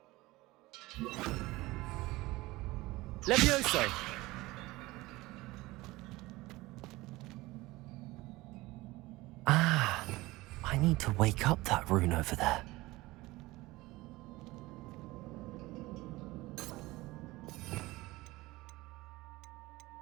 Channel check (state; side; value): quieter; left; 20.0 dB